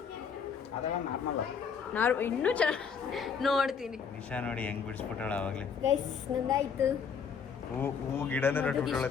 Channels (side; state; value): right; quieter; 6.4 dB